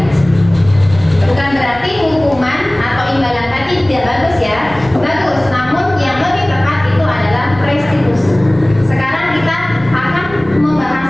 Bukan berarti hukuman atau imbalan tadi tidak bagus ya. Bagus, namun yang lebih tepat itu adalah restitusi. Sekarang kita akan membahas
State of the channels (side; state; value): right; noise; rumble, 18 dB below the sound